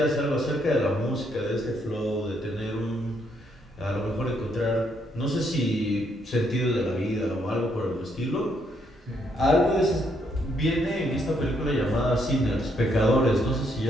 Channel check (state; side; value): normal; both; correlation 0.73